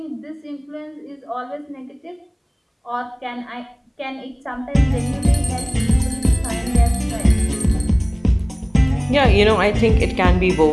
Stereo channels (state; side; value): identical; both; correlation 1.00